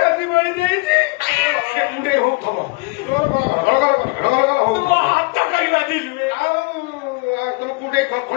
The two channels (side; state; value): right; quieter; 27.2 dB